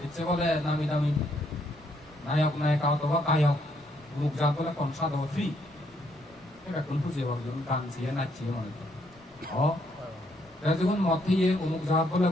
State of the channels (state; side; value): normal; both; correlation 0.72